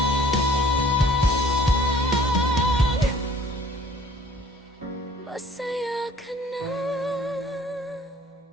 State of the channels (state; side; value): normal; both; correlation 0.53